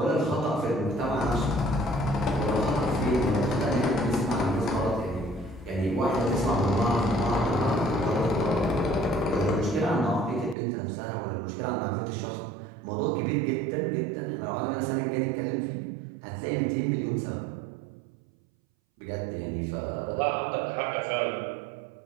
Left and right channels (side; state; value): left; drops out; at 10.6 s